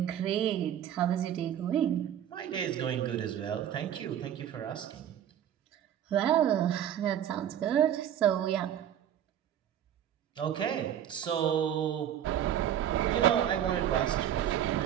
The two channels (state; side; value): quieter; left; 10.3 dB